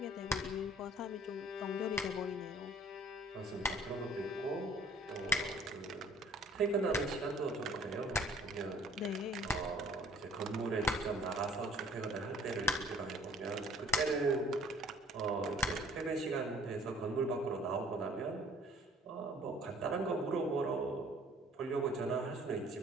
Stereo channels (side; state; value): both; normal; correlation 0.54